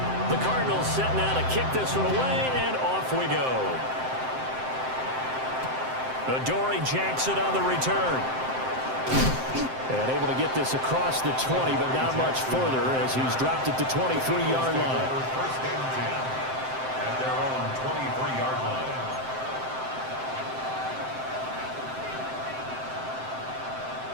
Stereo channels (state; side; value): late; left; 7.7 ms